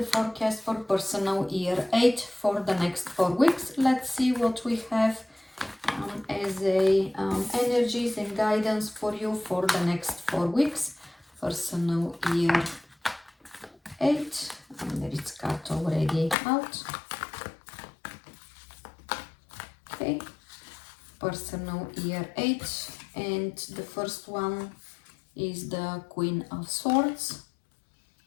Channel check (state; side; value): drops out; right; at 16.4 s